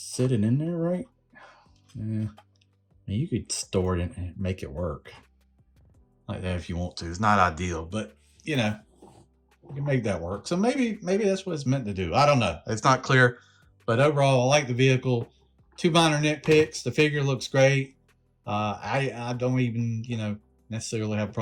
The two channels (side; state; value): both; identical; correlation 1.00